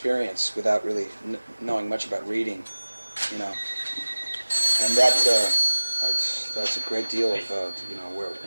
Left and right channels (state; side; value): inverted; both; correlation -1.00